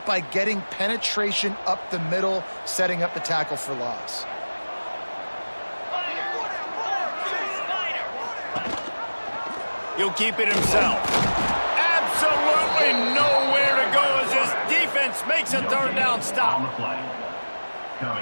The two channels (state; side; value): inverted; both; correlation -1.00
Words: by getting penetration up the middle, setting up the tackle for loss. He'll keep it himself. Absolutely nowhere to go as this defense makes a third down stop. On the play.